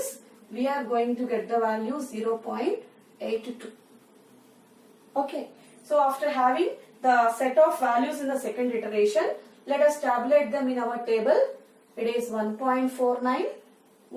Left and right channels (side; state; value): both; identical; correlation 1.00